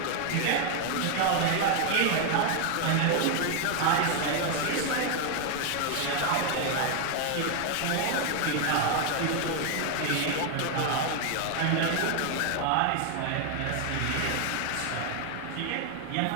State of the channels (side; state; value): both; different; correlation 0.01